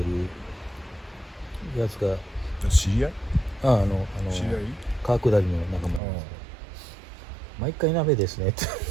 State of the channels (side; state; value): left; drops out; at 6.0 s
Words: るやつが知り合い？知り合い？川下りの仲間なんですけど、毎回鍋ですねって